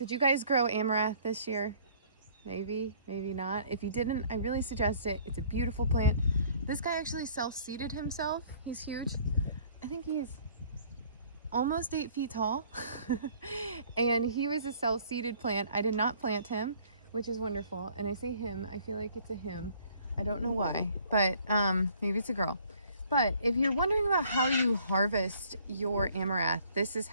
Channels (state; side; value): inverted; both; correlation -0.57